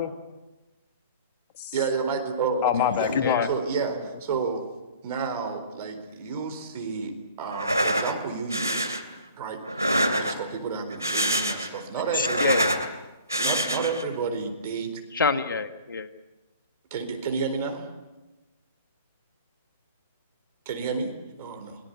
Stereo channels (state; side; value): inverted; both; correlation -0.45